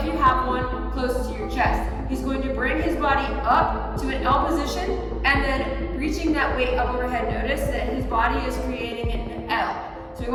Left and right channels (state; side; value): identical; both; correlation 1.00